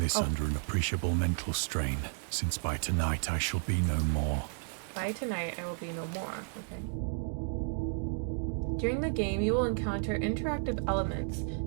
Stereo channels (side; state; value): left; silent; 56 dB below the other